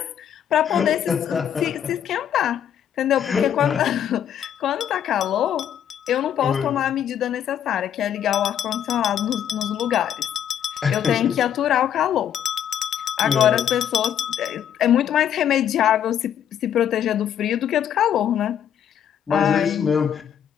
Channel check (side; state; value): right; quieter; 9.5 dB